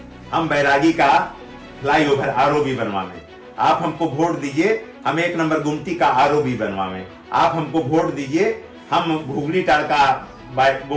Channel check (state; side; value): identical; both; correlation 1.00